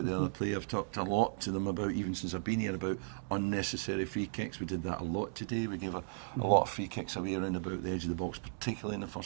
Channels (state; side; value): silent; left; digital silence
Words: the other player. I've talked a lot to them about, even since I've been here, about unnecessary free kicks. We did that a lot today. We gave a lot of free kicks away around about the edge of the box, particularly in the